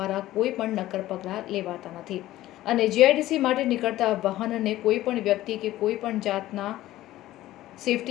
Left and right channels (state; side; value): quieter; right; 15.2 dB